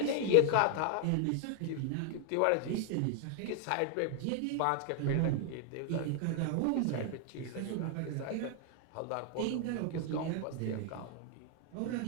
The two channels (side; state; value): both; different; correlation 0.00